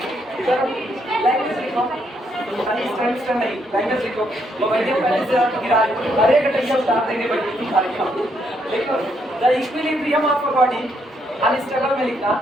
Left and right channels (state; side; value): normal; both; correlation 0.75